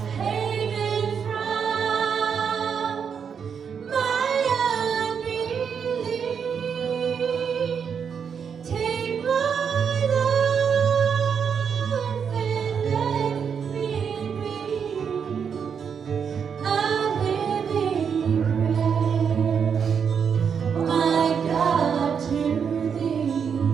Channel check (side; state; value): left; quieter; 6.9 dB